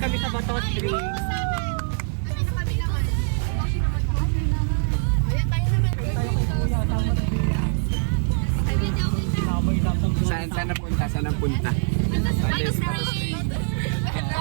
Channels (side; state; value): left; silent; digital silence